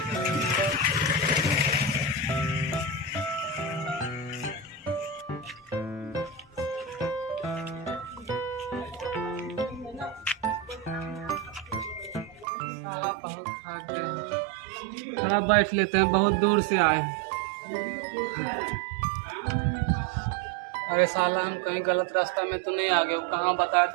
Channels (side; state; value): left; drops out; at 12.5 s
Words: साला बहुत थक गए, थोड़ा बैठ लेते हैं, बहुत दूर से आए हैं। अरे साला हम कहीं गलत रास्ता में तो नहीं आ गए? वो कहाँ बताया